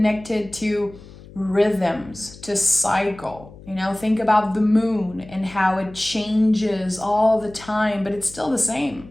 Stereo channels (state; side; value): noise; left; hum, 19 dB below the sound